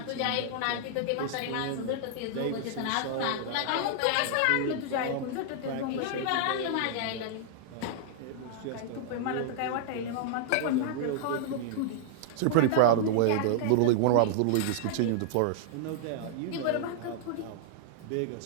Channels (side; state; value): both; different; correlation -0.01